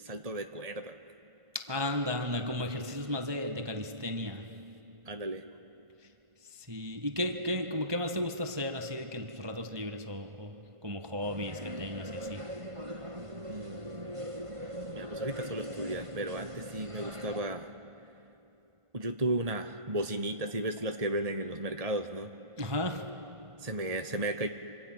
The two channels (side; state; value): left; late; 1.5 ms